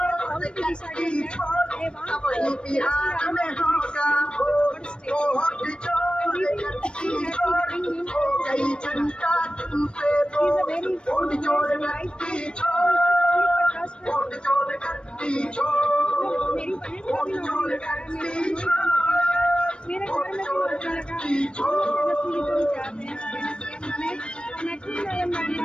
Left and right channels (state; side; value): late; right; 0.056 ms